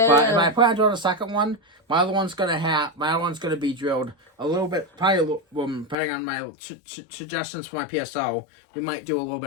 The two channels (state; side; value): drops out; right; at 6.0 s